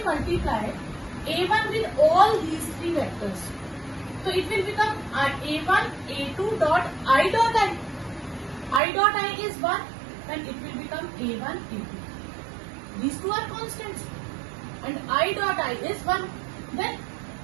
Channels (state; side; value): drops out; left; at 8.8 s